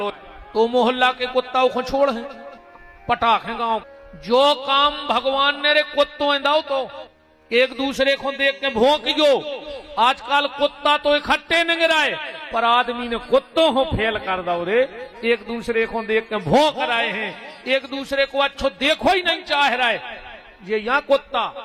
तो मोहल्ला के कुत्ता को छोड़ है पटाख है गांव। जो काम भगवान ने रे कुत्तों दाओ तो एक दूसरे को देख के भौंक गयो। आजकल कुत्ता तो इकट्ठे नहीं गिराए पर आदमी ने कुत्तों को फेल कर दो रे, एक दूसरे को देख के भौंक रहे हैं, एक दूसरे को अच्छो देखो ही नहीं चाह रहा है। ये यहाँ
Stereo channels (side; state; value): both; identical; correlation 1.00